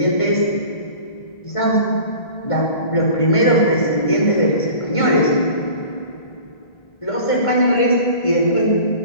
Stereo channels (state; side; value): late; right; 1.5 ms